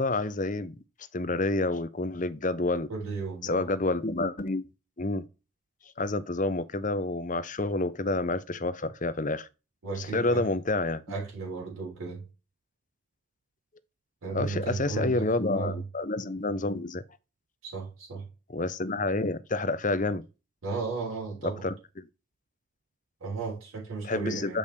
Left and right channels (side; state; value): both; normal; correlation 0.24